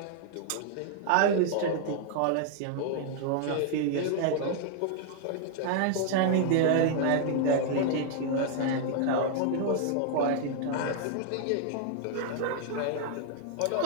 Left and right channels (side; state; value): both; different; correlation -0.01